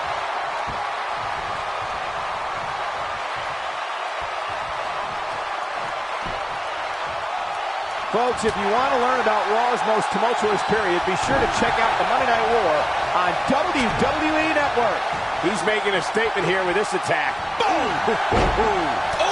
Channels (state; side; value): identical; both; correlation 1.00